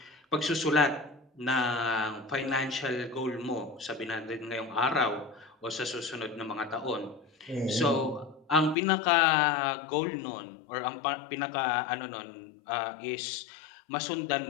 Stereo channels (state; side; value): drops out; right; at 8.8 s